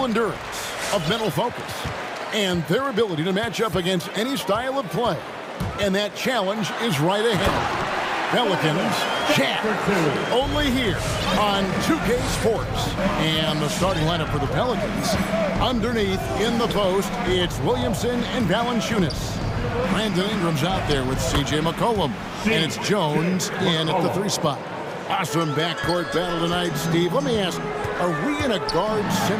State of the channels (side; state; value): both; identical; correlation 1.00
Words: endurance, of mental focus, and their ability to match up against any style of play. And that challenge is right ahead. Pelicans, Jazz, only here on 2K Sports. And the starting lineup for the Pelicans, underneath in the post, it's Williamson and Valanciunas. Brandon Ingram's out there with C.J. McCollum, and it's Jones in at the 3 spot. Awesome backcourt battle tonight, Steve. Let me ask, are we in a